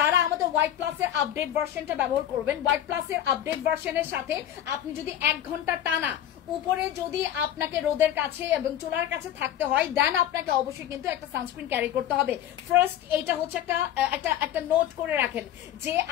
আমাদের হোয়াইট প্লাসের আপডেট ভার্সনটা ব্যবহার করবেন, হোয়াইট প্লাসের আপডেট ভার্সনের সাথে আপনি যদি 1 ঘন্টা টানা উপরে যদি আপনাকে রোদের কাছে এবং চুলার কাছে থাকতে হয়, দেন আপনাকে অবশ্যই কিন্তু একটা সানস্ক্রিন ক্যারি করতে হবে। ফার্স্ট এটা হচ্ছে একটা নোট করে রাখেন যে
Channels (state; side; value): quieter; right; 11.4 dB